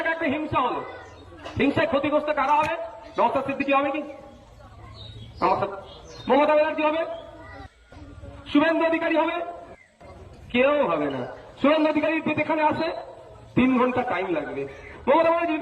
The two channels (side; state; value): both; identical; correlation 1.00